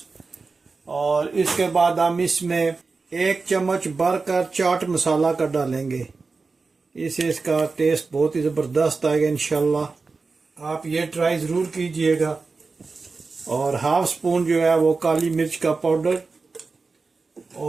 और इसके बाद हम इसमें 1 चम्मच भरकर चाट मसाला का डालेंगे। इससे इसका टेस्ट बहुत ही ज़बरदस्त आएगा इंशाल्लाह। आप ये ट्राई ज़रूर कीजिएगा। और 1/2 स्पून जो है वो काली मिर्च का पाउडर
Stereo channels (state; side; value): quieter; left; 4.2 dB